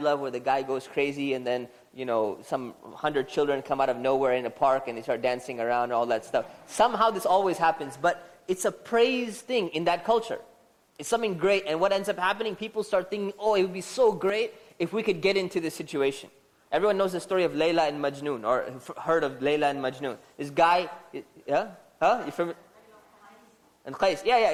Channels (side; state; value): both; identical; correlation 1.00